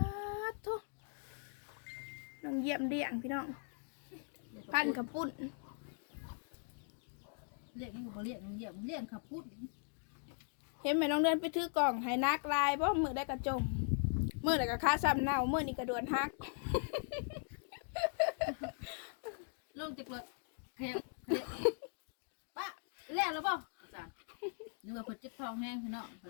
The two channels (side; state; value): right; silent; 51 dB below the other